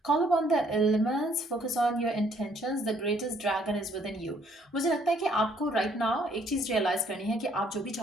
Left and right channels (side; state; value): both; normal; correlation 0.64